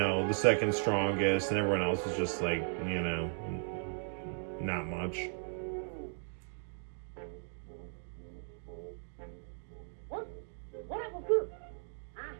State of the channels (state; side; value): silent; left; 54 dB below the other